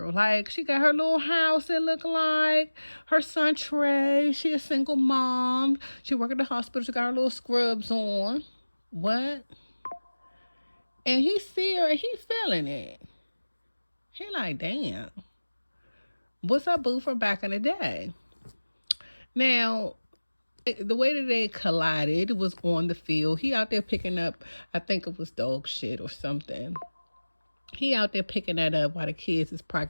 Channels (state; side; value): inverted; both; correlation -1.00